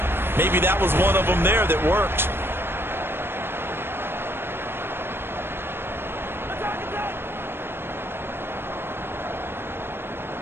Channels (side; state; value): left; late; 0.11 ms